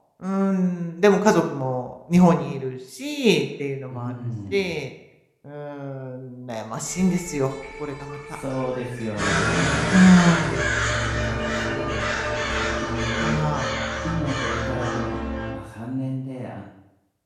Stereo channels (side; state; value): both; identical; correlation 1.00